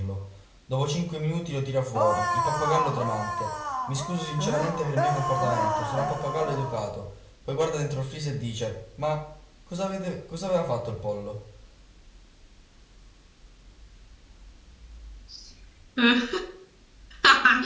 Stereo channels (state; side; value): identical; both; correlation 1.00